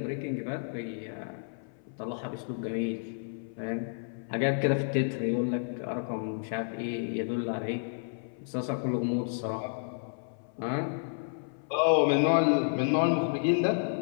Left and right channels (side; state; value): right; silent; 57 dB below the other